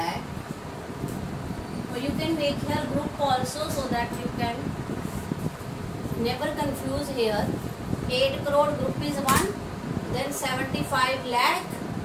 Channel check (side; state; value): both; identical; correlation 1.00